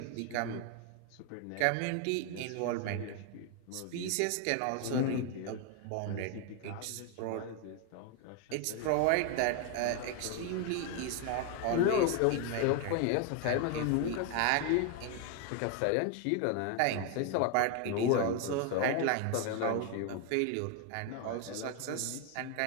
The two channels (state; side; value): different; both; correlation 0.01